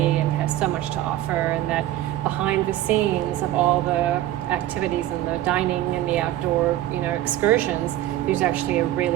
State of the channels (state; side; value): quieter; left; 14.0 dB